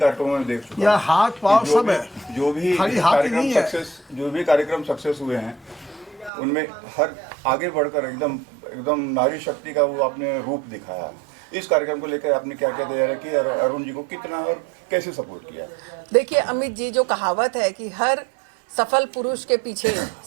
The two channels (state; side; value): drops out; left; at 6.3 s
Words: में देख चुका हूं। यह हाथ पांव सब है, जो भी खाली हाथ ही नहीं है। कार्यक्रम सक्सेस हुए हैं उनमें हर आगे बढ़कर एकदम नारी शक्ति का वो आपने रूप दिखाया। इस कार्यक्रम को लेकर आपने क्या क्या तैयारी की और अरुण जी को कितना और कैसे सपोर्ट किया? देखिए अमित जी, जो कहावत है कि हर सफल पुरुष के पीछे